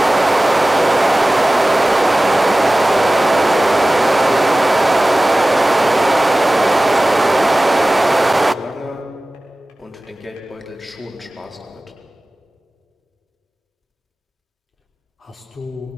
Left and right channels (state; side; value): normal; both; correlation 0.97